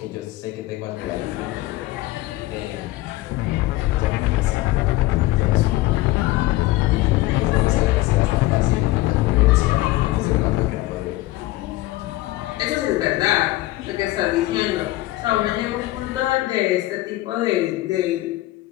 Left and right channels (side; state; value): right; quieter; 17.8 dB